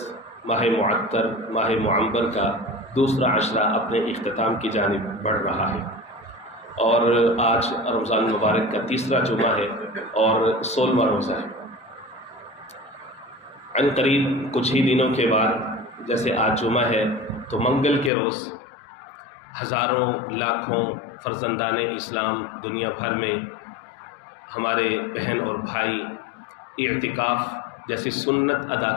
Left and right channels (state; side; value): drops out; right; at 18.1 s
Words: ماہ معطر، ماہ معمبر کا دوسرا عشرہ اپنے اختتام کی جانب بڑھ رہا ہے، اور آج رمضان مبارک کا تیسرا جمعہ ہے اور 16واں روزہ ہے۔ عن قریب کچھ ہی دنوں کے بعد، جیسے آج جمعہ ہے تو منگل کے روز ہزاروں لاکھوں فرزندان اسلام دنیا بھر میں ہمارے بہن اور بھائی اعتکاف جیسی سنت ادا